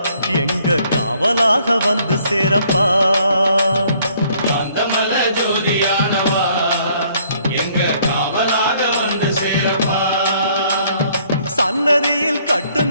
எங்க காவலாக வந்து சேரப்பா காந்தமல ஜோதியானவா எங்க காவலாக வந்து சேரப்பா சன்னதியில்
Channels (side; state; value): both; inverted; correlation -0.63